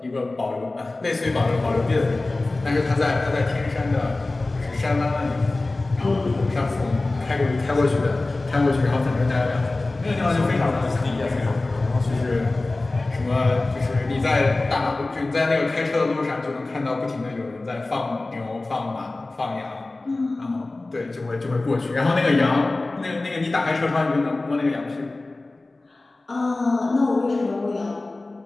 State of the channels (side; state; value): right; quieter; 3.1 dB